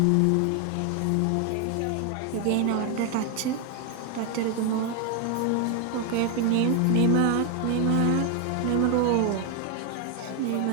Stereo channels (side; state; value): both; different; correlation 0.01